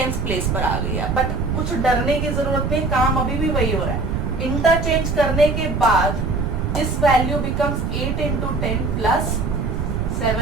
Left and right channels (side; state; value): right; noise; rumble, 1 dB below the sound